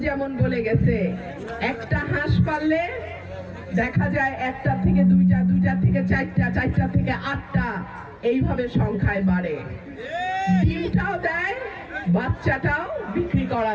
যেমন বলে গেছে, একটা হাঁস পাললে দেখা যায় একটা থেকে দুইটা, দুইটা থেকে চারটা, চারটা থেকে আটটা, এইভাবে সংখ্যায় বাড়ে। ডিমটাও দেয়, বাচ্চাটাও বিক্রি করা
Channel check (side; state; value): both; identical; correlation 1.00